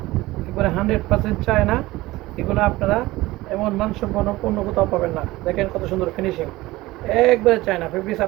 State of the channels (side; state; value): left; quieter; 18.9 dB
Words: একবারে 100% চায়না। এগুলো আপনারা এমন মানসম্পন্ন পণ্য কোথাও পাবেন না। দেখেন কত সুন্দর ফিনিশিং, একবারে চায়না ফেব্রিক্স।